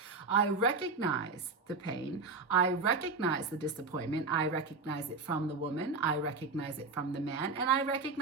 I recognize the pain. I recognize the disappointment. I recognize it from the woman. I recognize it from the man. And I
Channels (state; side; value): quieter; left; 4.1 dB